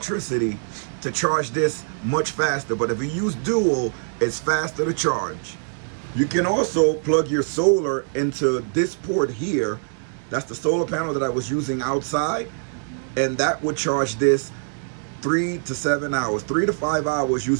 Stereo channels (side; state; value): left; silent; 63 dB below the other